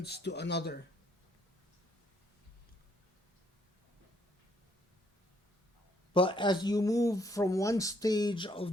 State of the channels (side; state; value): both; normal; correlation 0.70